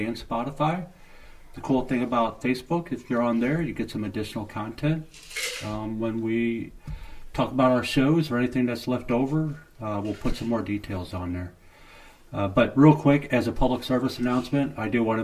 Spotify. The cool thing about Facebook, if you're on there, you get some additional content. When we talk about our shows or anything that's left over, we'll put some more details on there. But real quick, as a public service announcement, I do want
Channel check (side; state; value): both; identical; correlation 1.00